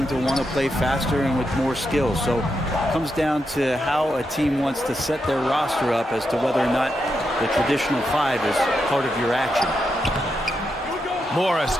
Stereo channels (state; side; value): normal; both; correlation 0.84